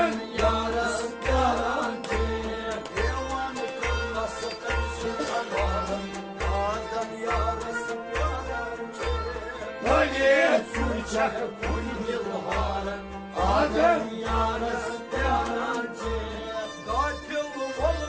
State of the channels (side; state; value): both; identical; correlation 1.00